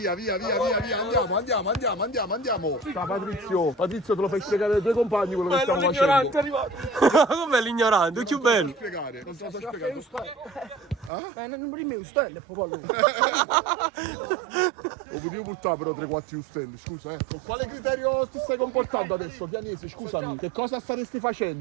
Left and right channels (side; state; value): left; drops out; at 11.1 s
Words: Andiamo. Ciao Patrizio. Patrizio, te lo fai spiegare ai tuoi compagni quello che stiamo facendo. è arrivato. Com'è l'ignorante? È più bello. Spiegare. Non te lo so spiegare. Non prima stelle, popolo. Lo potevo portare però 3-4 stelle, scusa Con quale criterio ti stai comportando adesso, Chianese? Scusami, che cosa staresti